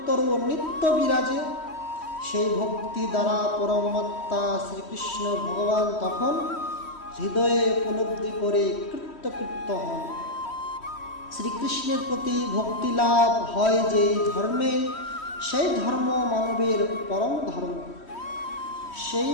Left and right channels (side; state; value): right; late; 3.1 ms